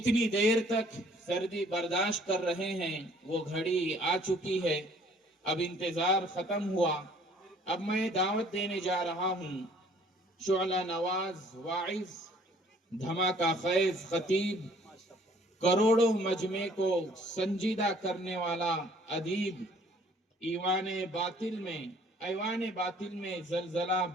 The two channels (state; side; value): normal; both; correlation 0.57